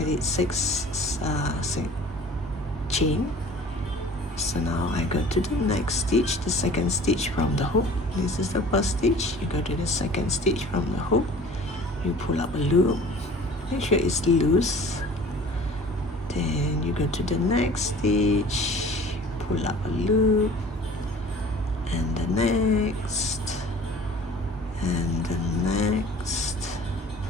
did 6 chain. So now I go to the next stitch, the second stitch from the hook. This is the first stitch. You go to the second stitch from the hook. You pull up a loop. Make sure it's loose. Then you go to the next stitch, pull up a loop, and the next, and the next.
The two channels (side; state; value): both; normal; correlation 0.46